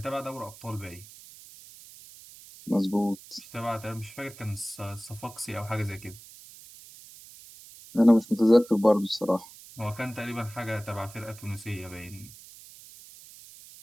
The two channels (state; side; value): noise; right; hiss, 19 dB below the sound